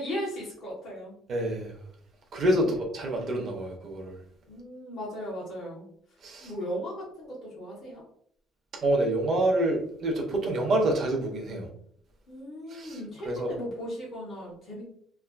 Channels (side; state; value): both; normal; correlation 0.61